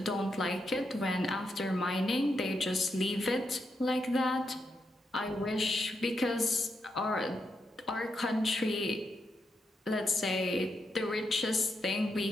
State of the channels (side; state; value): both; normal; correlation 0.83